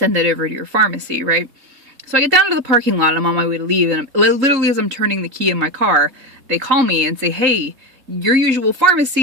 that over to your pharmacy, right? So I get down to the parking lot and I'm on my way to leave. And literally as I'm turning the key in my car, they call me and say, hey, your usual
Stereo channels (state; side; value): late; left; 3.8 ms